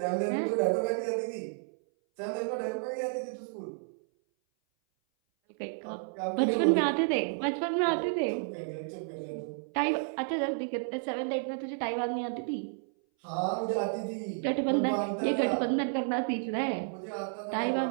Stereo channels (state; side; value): silent; left; 57 dB below the other